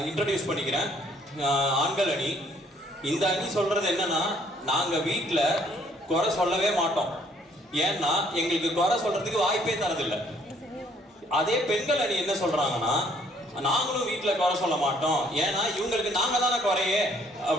இன்ட்ரடியூஸ் பண்ணிக்கிறேன். ஆண்கள் அணி. இந்த அணி சொல்றது என்னன்னா, நாங்க வீட்டில் குறை சொல்லவே மாட்டோம். ஏன்னா எங்களுக்கு குறை சொல்றதுக்கு வாய்ப்பே தரதில்லை. அதே பெண்கள் அணி என்ன சொல்றாங்கன்னா, நாங்களும் வீட்டில் குறை சொல்ல மாட்டோம், ஏன்னா இவங்களுக்கு நாங்க தானே குறையே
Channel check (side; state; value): both; normal; correlation 0.64